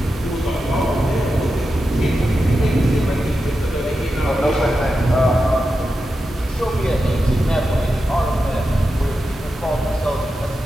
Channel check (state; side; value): normal; both; correlation 0.90